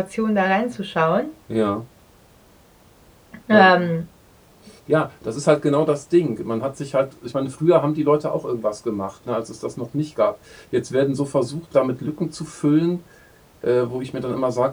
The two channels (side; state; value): both; identical; correlation 1.00